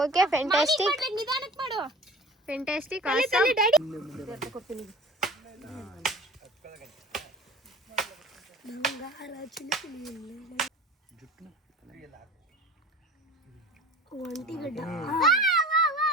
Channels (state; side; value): normal; both; correlation 0.40